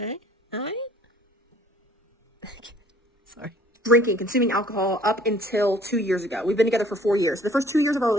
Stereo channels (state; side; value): normal; both; correlation 0.56